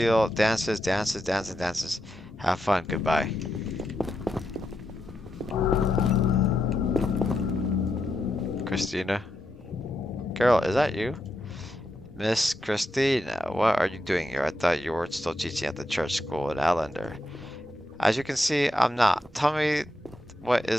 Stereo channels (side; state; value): both; normal; correlation 0.84